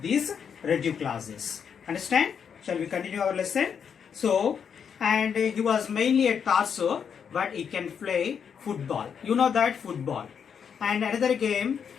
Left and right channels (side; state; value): right; quieter; 7.2 dB